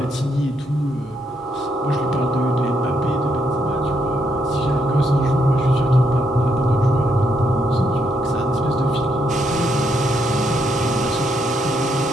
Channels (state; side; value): normal; both; correlation 0.76